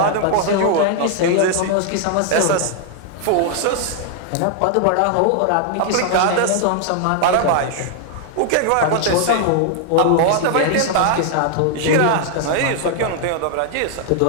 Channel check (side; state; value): both; different; correlation 0.00